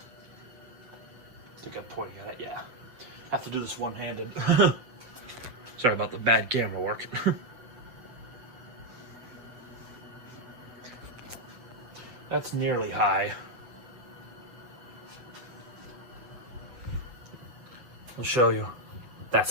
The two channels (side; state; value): left; late; 8.2 ms